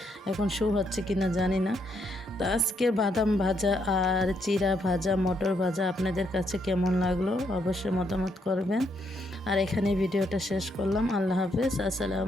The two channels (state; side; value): normal; both; correlation 0.75